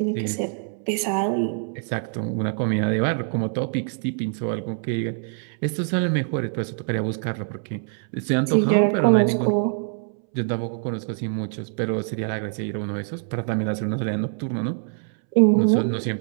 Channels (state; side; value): silent; left; 62 dB below the other